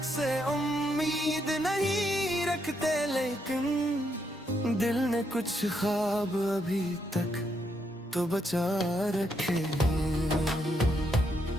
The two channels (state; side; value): normal; both; correlation 0.78